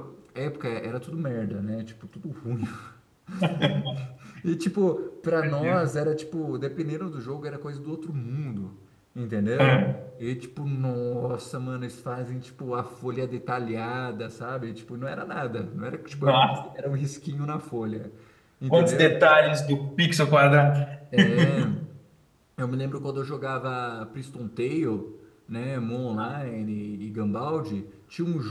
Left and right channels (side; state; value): both; identical; correlation 1.00